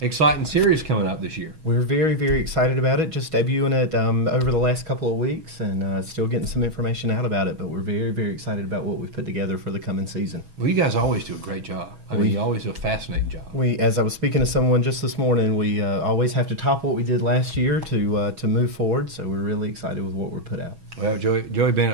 exciting series coming up this year. We're very, very excited about it. Just debuting it over the last couple of weeks and still getting some information out about it. But we're very, very excited about what we've put together for the coming season. Well, you guys always do a great job. I mean, you always do a fascinating job. As I was speaking to someone just this morning, we always have to top what we did last year to move forward. So we're really excited with what we're put out. Well, Joey Bennett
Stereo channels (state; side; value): late; left; 6.2 ms